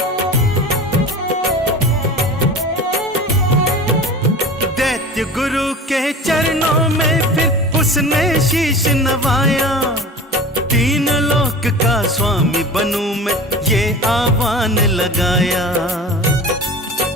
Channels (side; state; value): both; normal; correlation 0.36